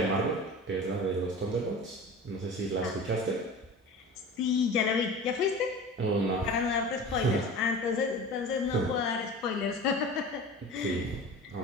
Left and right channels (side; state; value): both; normal; correlation 0.36